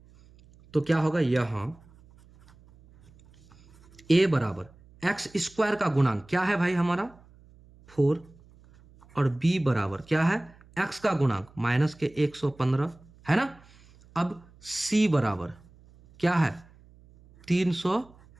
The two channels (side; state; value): right; noise; hum, 26 dB below the sound